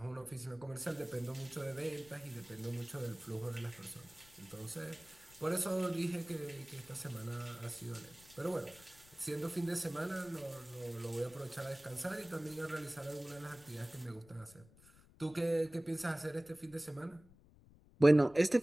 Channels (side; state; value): left; noise; rumble, 24 dB below the sound